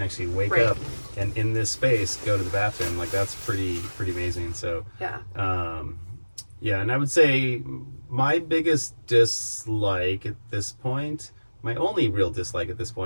actually wake up and in this space go to the bathroom. Like, that's pretty amazing. So Yeah, and I would say my biggest dislike at this point, my only real dislike at this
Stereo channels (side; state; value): both; inverted; correlation -1.00